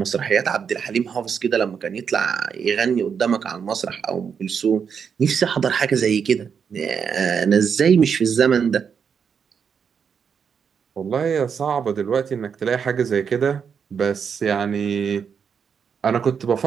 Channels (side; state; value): left; quieter; 6.8 dB